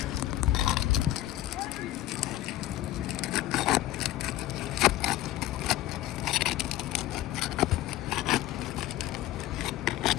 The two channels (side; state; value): right; quieter; 14.6 dB